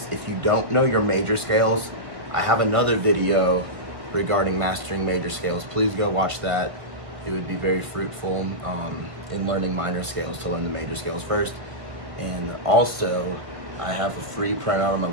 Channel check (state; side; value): late; left; 1.5 ms